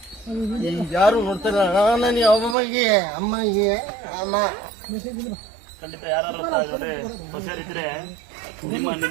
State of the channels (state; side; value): drops out; left; at 2.6 s